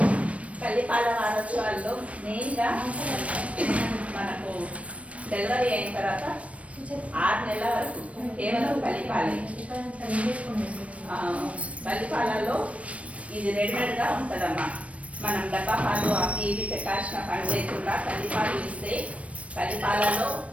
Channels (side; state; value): left; late; 0.064 ms